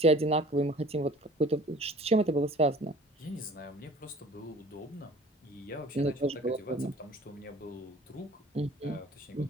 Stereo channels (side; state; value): both; normal; correlation 0.48